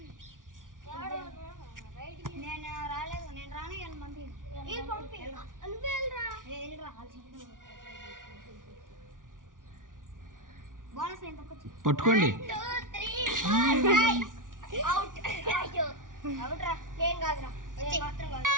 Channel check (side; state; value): left; late; 0.88 ms